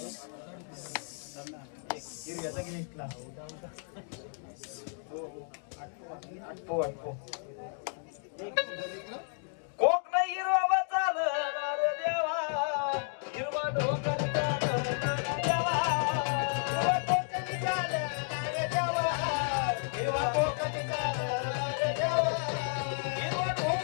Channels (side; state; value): right; silent; 56 dB below the other